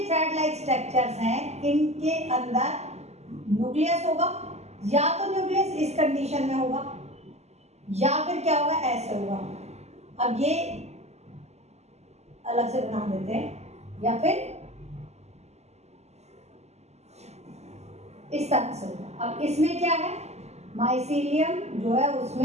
थ्रेड लाइक स्ट्रक्चर्स हैं, इनके अंदर न्यूक्लियस होगा, या तो न्यूक्लियस इस कंडीशन में होगा या फिर क्या होगा, ऐसे होगा। अब ये अलग से बना देते हैं, या फिर इस तरह से होगा। अब इसमें क्या है, माइसीलियम जो है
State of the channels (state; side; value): late; left; 0.32 ms